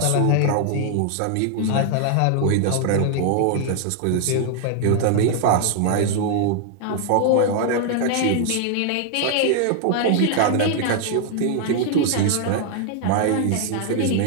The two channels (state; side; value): different; both; correlation 0.00